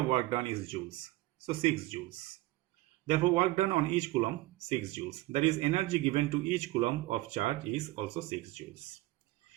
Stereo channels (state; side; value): quieter; left; 18.5 dB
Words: work done is joules. So 6 joules. Therefore, work done on each coulomb, 6 joules. That is, energy given to each coulomb of charge is also 6 joules.